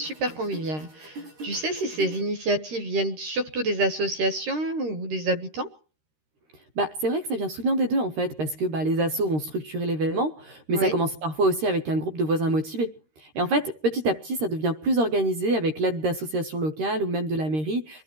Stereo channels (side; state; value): left; late; 13 ms